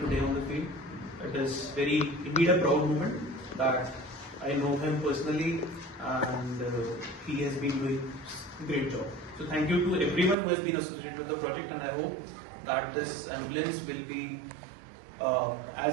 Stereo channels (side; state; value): left; drops out; at 10.4 s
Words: on the field, it is very indeed a proud moment that I know him personally, and he has been doing a great job. So thank you to everyone who has been associated with the project, and I hope that this ambulance will be